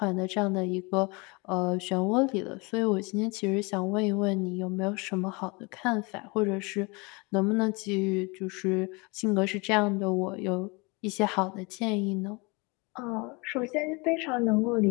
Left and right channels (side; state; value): right; quieter; 28.1 dB